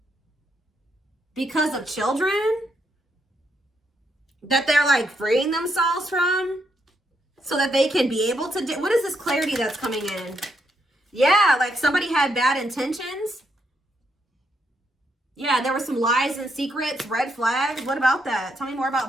because of children that they're like freeing themselves from, so that they can be able to do. What is this clarity that's coming in? Yeah, like somebody had bad intentions. Yeah, there were some lies and secrets, red flags. What about that? Tell me more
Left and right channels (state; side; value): normal; both; correlation 0.78